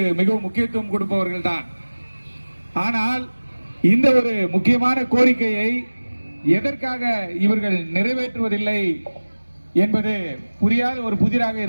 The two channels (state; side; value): inverted; both; correlation -1.00